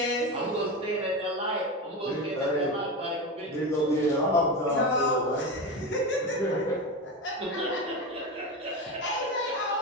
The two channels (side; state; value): both; normal; correlation 0.20